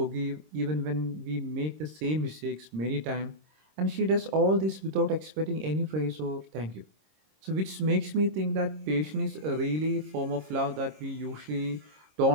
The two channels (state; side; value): late; left; 26 ms